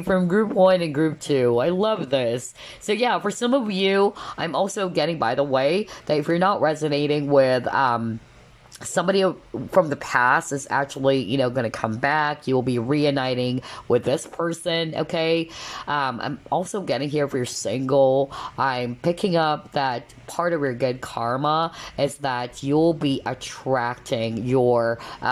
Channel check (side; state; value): both; identical; correlation 1.00